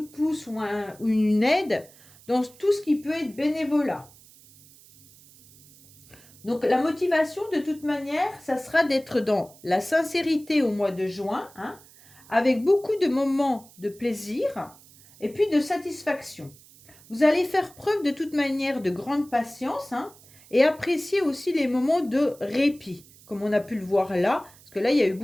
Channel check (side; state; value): right; noise; hiss, 24 dB below the sound